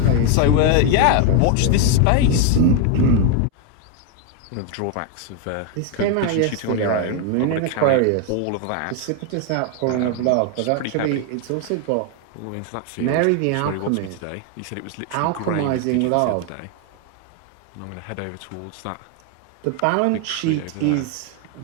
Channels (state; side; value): different; both; correlation 0.01